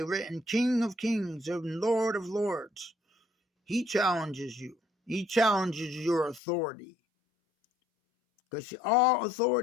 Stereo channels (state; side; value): drops out; right; at 6.4 s